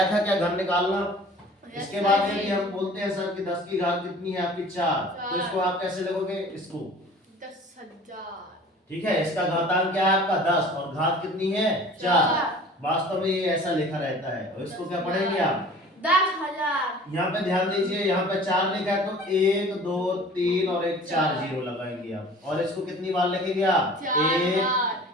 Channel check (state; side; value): normal; both; correlation 0.45